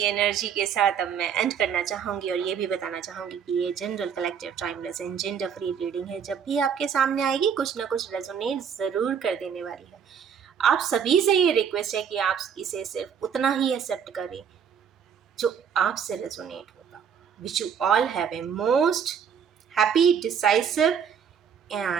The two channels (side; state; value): left; quieter; 7.5 dB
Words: एनर्जी के साथ अब मैं एंड करना चाहूँगी और ये भी बताना चाहूँगी कि ये general collective timeless and gender free reading है। जब भी आपके सामने आएगी कुछ ना कुछ रेजोनेट ज़रूर कर देने वाली है। आप सभी से ये रिक्वेस्ट है कि आप इसे सिर्फ उतना ही एक्सेप्ट करें जो आपसे रेजोनेट होता। Wish you all have a most happy, decisive